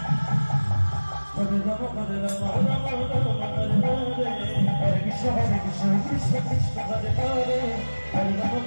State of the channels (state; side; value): inverted; both; correlation -1.00